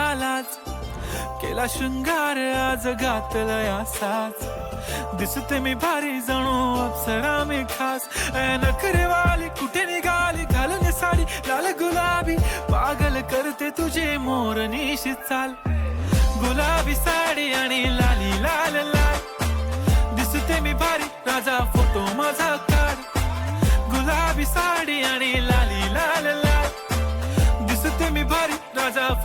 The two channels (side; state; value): both; identical; correlation 1.00